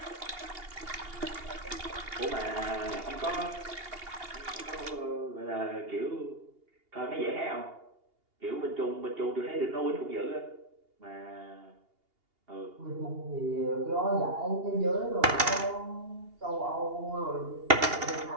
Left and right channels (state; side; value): late; left; 2.8 ms